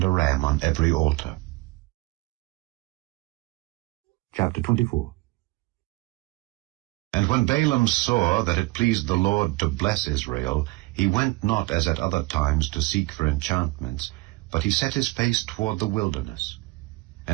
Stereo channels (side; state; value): left; quieter; 22.2 dB